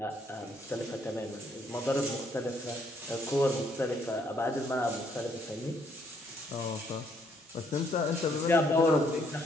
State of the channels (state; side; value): normal; both; correlation 0.69